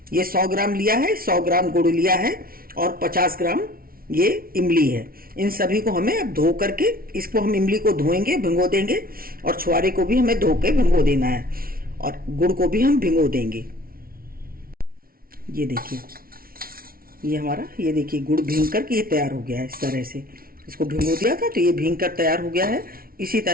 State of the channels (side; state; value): left; late; 0.43 ms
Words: ये 100 ग्राम लिया है, 100 ग्राम गुड़ लिया है और 50 ग्राम ये इमली है। इन सभी को हमें अब धो करके, इसको हम इमली को धोएंगे, भिगो देंगे और छुआरे को भी हमें धो के भिगो देना है और गुड़ को भी हम भिगो देंगे। ये देखिए ये हमारा, ये देखिए गुड़ भीग करके ये तैयार हो गया है। इस तरह से इसको भिगो दिया था तो ये भीग कर तैयार हो गया है। इसी